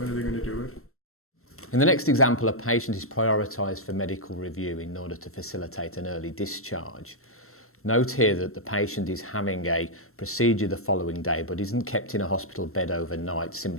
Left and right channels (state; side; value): late; right; 0.63 ms